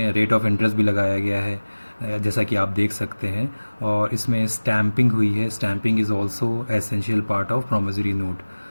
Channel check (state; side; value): inverted; both; correlation -1.00